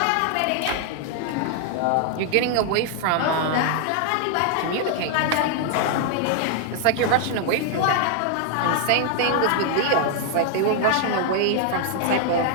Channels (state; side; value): different; both; correlation 0.00